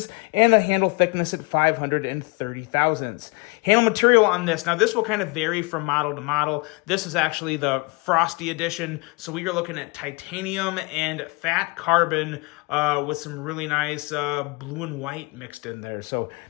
and a handle thickness at 530 thousandths. Handle material on this, now this will kind of vary from model to model. This is actually the Frosty edition, so we are looking at titanium and fat carbon with some really nice blue and white mixed in there. So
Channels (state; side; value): quieter; right; 27.8 dB